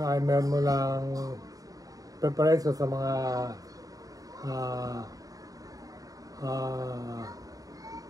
ay meron mo lang preparation sa mga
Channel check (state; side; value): late; left; 0.17 ms